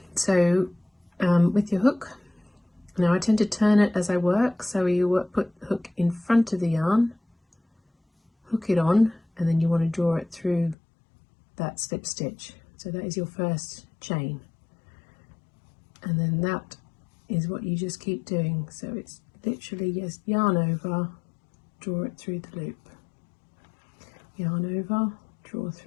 So with your hook, now I tend to turn it as I work, so you put the hook in front of the yarn, hook it on, and then you want to draw it through that slip stitch. So that is your first chain, and then that is what you just keep doing. So it's literally just yarn over, draw it through the loop, yarn over, draw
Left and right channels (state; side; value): drops out; right; at 10.8 s